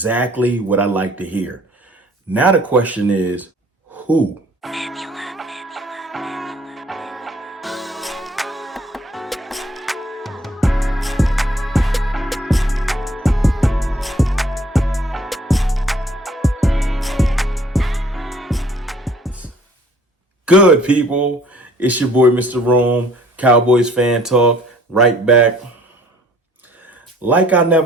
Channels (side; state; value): both; normal; correlation 0.57